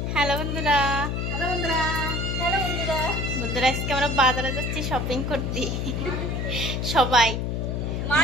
Hello বন্ধুরা, hello বন্ধুরা, hello বন্ধুরা। বন্ধুরা আজকে আমরা বাজারে যাচ্ছি শপিং করতে। সবাই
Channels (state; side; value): noise; left; hum, 1 dB below the sound